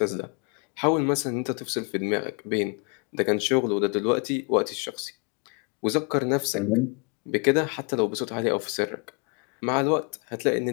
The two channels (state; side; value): quieter; right; 34.6 dB